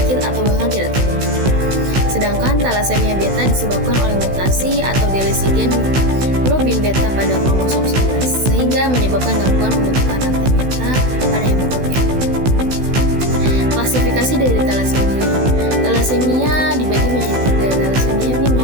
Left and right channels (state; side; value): late; left; 16 ms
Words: atau bahkan tidak terbentuk. Sedangkan thalassemia beta disebabkan oleh mutasi atau delesi gen globin beta pada kromosom 11, sehingga menyebabkan gangguan pembentukan rantai beta pada hemoglobin. Klasifikasi dari thalassemia. Thalassemia dibagi menjadi 3. Thalassemia